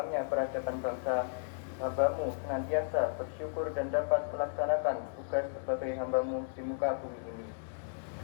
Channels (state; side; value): silent; right; digital silence